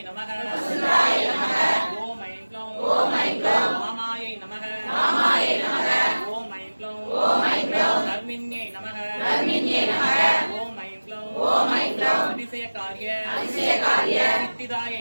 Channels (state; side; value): inverted; both; correlation -1.00